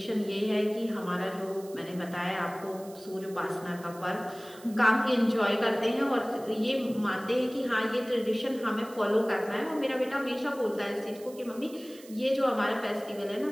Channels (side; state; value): right; noise; hiss, 21 dB below the sound